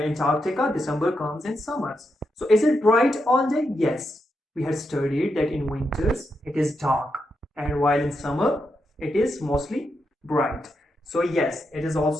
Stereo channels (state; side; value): normal; both; correlation 0.84